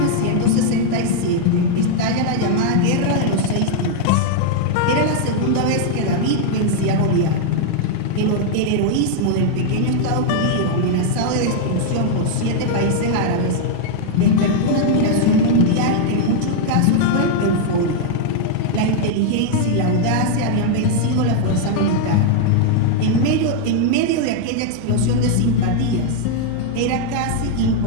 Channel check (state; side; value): different; both; correlation 0.00